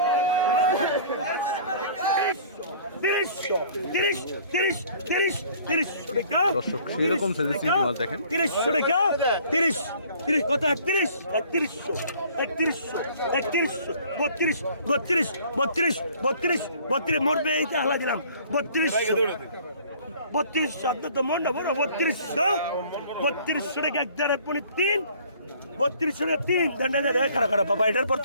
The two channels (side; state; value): both; inverted; correlation -0.53